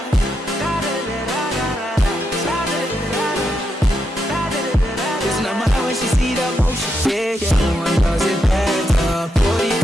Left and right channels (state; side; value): normal; both; correlation 0.83